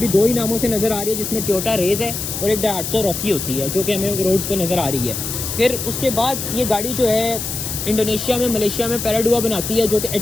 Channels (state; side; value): noise; left; hiss, 5 dB below the sound